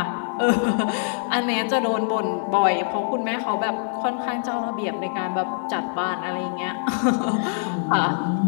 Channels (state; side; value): silent; right; 58 dB below the other